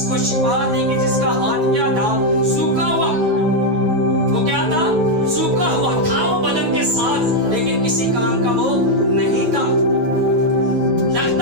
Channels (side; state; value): left; late; 9.3 ms